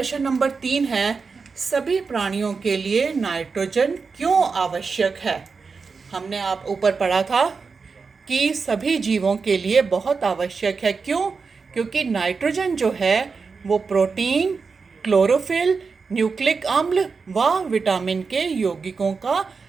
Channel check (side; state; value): left; quieter; 4.9 dB